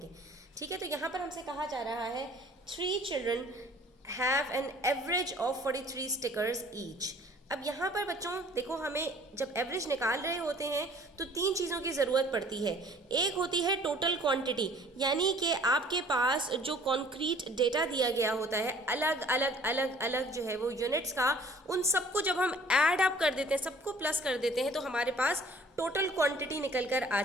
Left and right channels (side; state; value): both; normal; correlation 0.53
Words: ठीक है, तो यहाँ पर हमसे कहा जा रहा है 3 children have an average of 43 stickers each. अब यहाँ पर बच्चों देखो, हमें जब एवरेज निकाल रहे होते हैं तो 3 चीज़ों की ज़रूरत पड़ती है। एक होती है टोटल क्वांटिटी, यानी कि आपके पास जो कॉन्क्रीट डेटा दिया गया होता है अलग अलग अलग अलग जो है वो यूनिट्स का, उन सबको जब हम ऐड अप कर देते हैं, सबको प्लस कर देते हैं, तो हमारे पास टोटल क्वांटिटी निकल कर आ